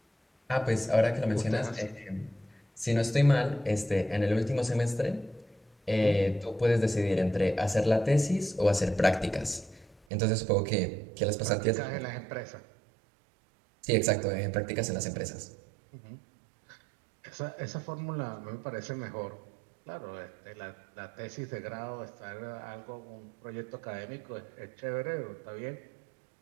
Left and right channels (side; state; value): left; drops out; at 10.1 s